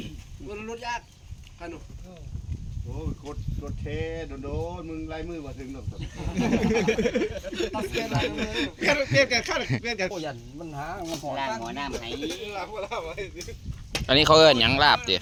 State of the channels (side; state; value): both; identical; correlation 1.00